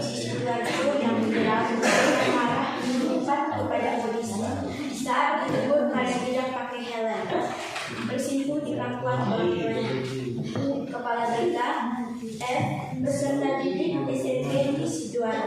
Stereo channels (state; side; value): identical; both; correlation 1.00